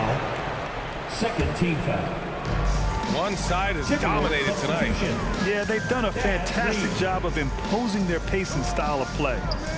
Second team foul. One side is dominated tonight. Yeah, they've done a fantastic job of imposing their pace and style of play.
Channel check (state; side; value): identical; both; correlation 1.00